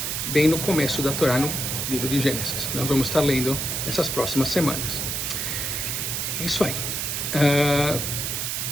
bem no começo da Torá, no livro de Gênesis. Nós vamos estar lendo nessas próximas semanas. É isso aí.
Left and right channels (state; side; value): noise; right; hiss, 2 dB below the sound